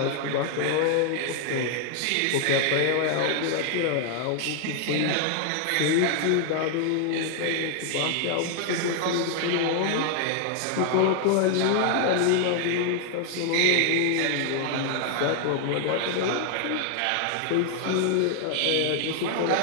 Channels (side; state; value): both; different; correlation 0.00